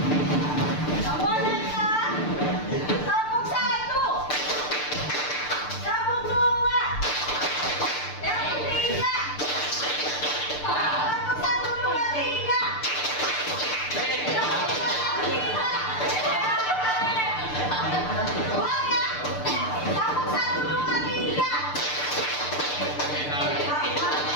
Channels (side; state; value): right; late; 6.7 ms